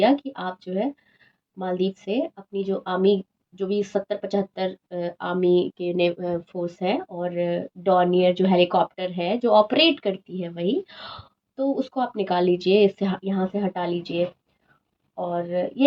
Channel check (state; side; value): identical; both; correlation 1.00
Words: कि आप जो है मालदीव से अपनी जो आर्मी, जो भी 70-75 आर्मी के ने फोर्स है, और डॉनियर जो हेलीकॉप्टर है जो ऑपरेट करती है वही, तो उसको आप निकाल लीजिए, इससे यहाँ से हटा लीजिए। और